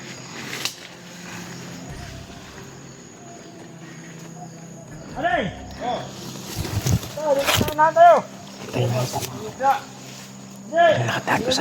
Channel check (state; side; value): identical; both; correlation 1.00